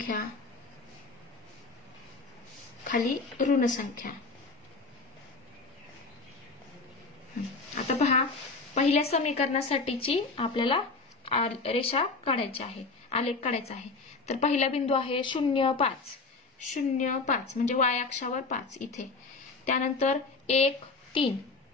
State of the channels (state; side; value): quieter; right; 4.0 dB